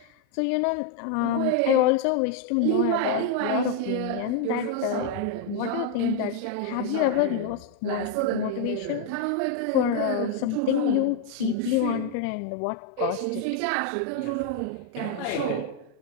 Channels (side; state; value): both; different; correlation 0.01